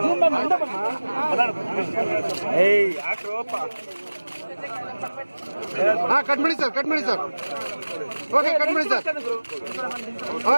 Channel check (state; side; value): inverted; both; correlation -1.00